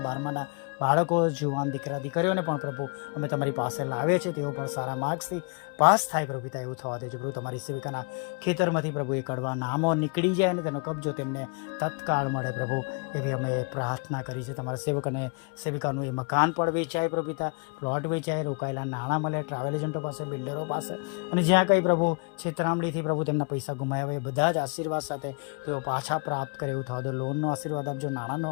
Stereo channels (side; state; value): right; quieter; 33.9 dB